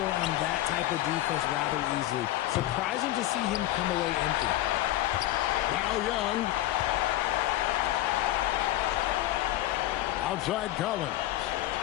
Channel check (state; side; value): quieter; right; 15.0 dB